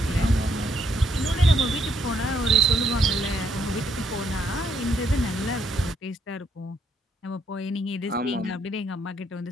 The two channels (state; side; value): normal; both; correlation 0.73